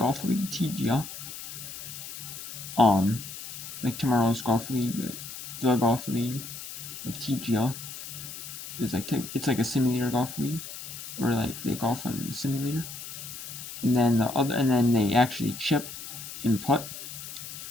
league TGL. Like tomorrow's golf league, like the golf league, like TGL. It's like a simulator golf league, where like they golf on the simulator, and then they actually chip and putt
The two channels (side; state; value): left; noise; hiss, 10 dB below the sound